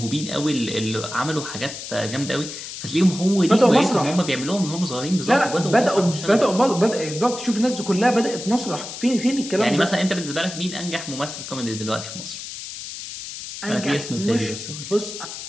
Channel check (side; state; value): left; noise; hiss, 10 dB below the sound